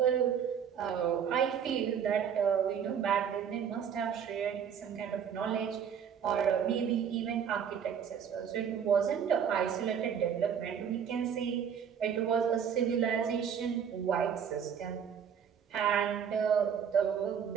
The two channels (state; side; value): quieter; left; 7.8 dB